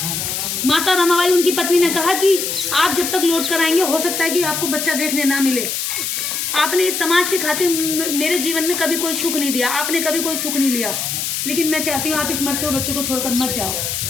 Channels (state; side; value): noise; left; hiss, 2 dB below the sound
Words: माता रमाबाई उनकी पत्नी ने कहा कि आप जब तक लौट कर आएंगे हो सकता है कि आपको बच्चा देखने ना मिले। आपने इस समाज के खातिर मेरे जीवन में कभी कोई सुख नहीं दिया, आपने कभी कोई सुख नहीं लिया, लेकिन मैं चाहती हूँ आप इस मरते हुए बच्चे को छोड़कर मत जाओ।